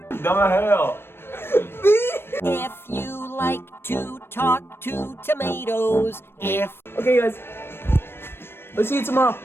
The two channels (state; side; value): late; right; 0.11 ms